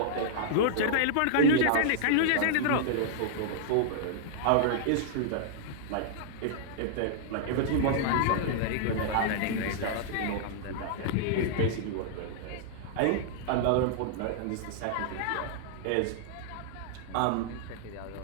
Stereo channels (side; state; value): both; different; correlation -0.01